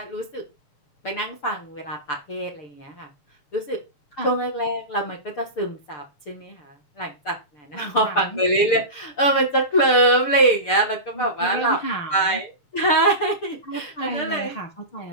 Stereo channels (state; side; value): late; right; 6.8 ms